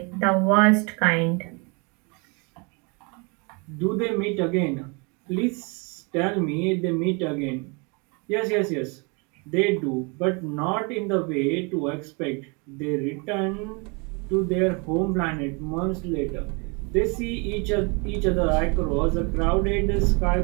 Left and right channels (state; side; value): quieter; left; 31.7 dB